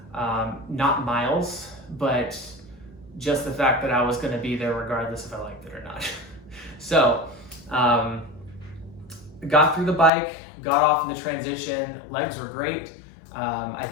not miles, but just the fact that I was going to be there regardless if I liked it or not. So got through the bike, got off in the transition, legs were great. I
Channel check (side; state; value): right; drops out; at 10.1 s